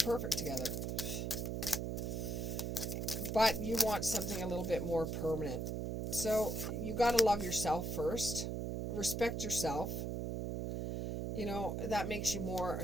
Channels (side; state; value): right; noise; hum, 2 dB below the sound